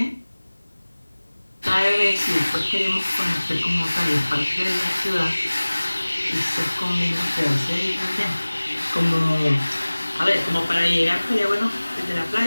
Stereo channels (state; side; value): inverted; both; correlation -1.00